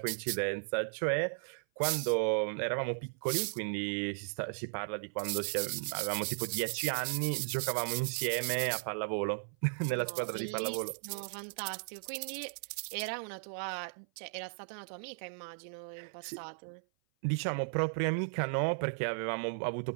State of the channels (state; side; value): silent; left; 54 dB below the other